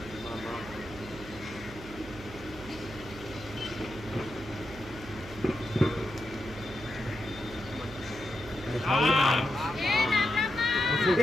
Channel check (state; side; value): noise; right; hum, 15 dB below the sound